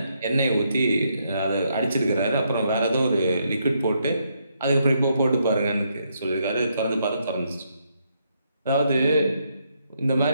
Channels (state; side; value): inverted; both; correlation -0.76